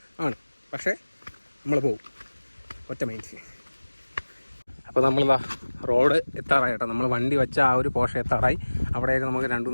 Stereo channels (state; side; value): inverted; both; correlation -1.00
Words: ആണ്, പക്ഷേ നമ്മൾ പോകും ഒറ്റ മൈൻഡിൽ. അപ്പോൾ നമ്മളിതാ റോഡ് എത്താറായി കേട്ടോ. നമ്മൾ വണ്ടി വെച്ച ആ ഒരു പോർഷൻ എത്താറായി. അവിടെയൊക്കെ നമുക്ക്